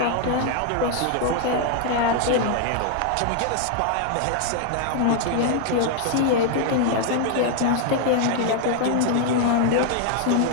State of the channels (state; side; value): different; both; correlation 0.00